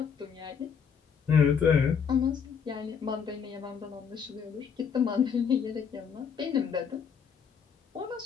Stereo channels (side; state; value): right; quieter; 6.8 dB